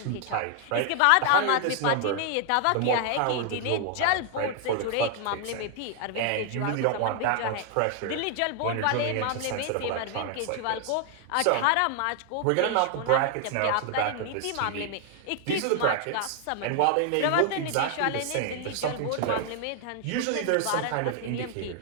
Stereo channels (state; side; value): different; both; correlation 0.00